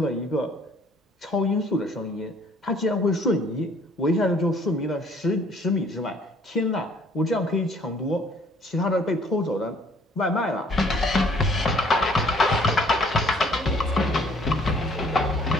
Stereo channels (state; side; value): normal; both; correlation 0.59